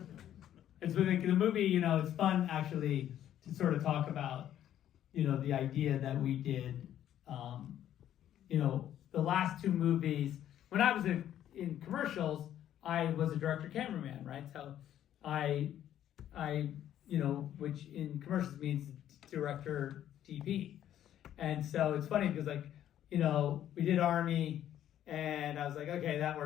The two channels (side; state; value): right; quieter; 11.3 dB